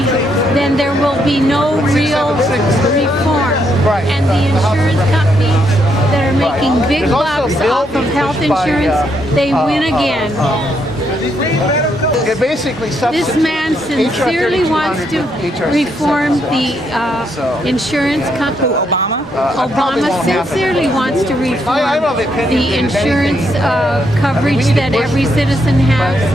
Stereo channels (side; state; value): both; normal; correlation 0.76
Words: then there will be no real reform. Right. And the insurance companies that are making big bucks off of health insurance, they win again. It basically This man sincerely wants to reform the insurance company. Obama sincerely wants to reform the insurance coverage that every citizen has.